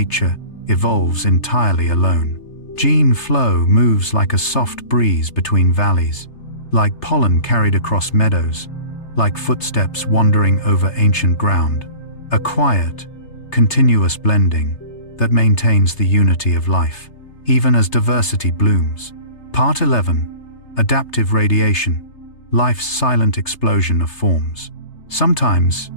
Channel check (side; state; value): right; late; 3.3 ms